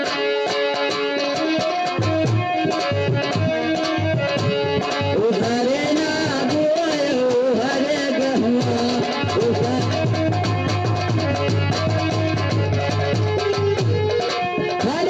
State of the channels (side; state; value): both; identical; correlation 1.00